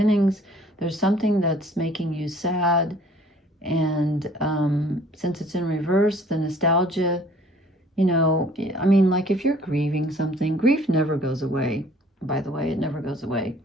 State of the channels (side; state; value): both; normal; correlation 0.55